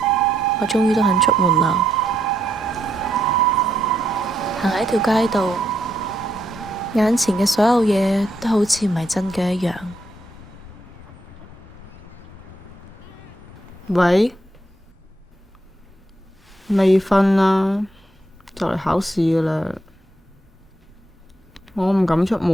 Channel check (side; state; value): both; normal; correlation 0.78